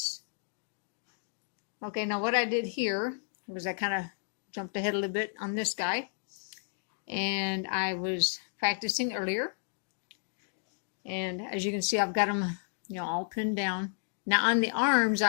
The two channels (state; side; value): silent; right; digital silence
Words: Okay, now what I did here was I kind of jumped ahead a little bit on this guy. And I was practicing earlier. And as you can see, I've got them, you know, all pinned down. Now on the arms,